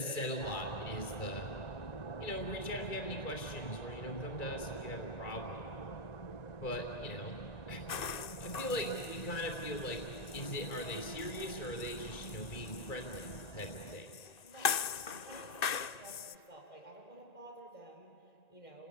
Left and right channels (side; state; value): right; late; 1.9 ms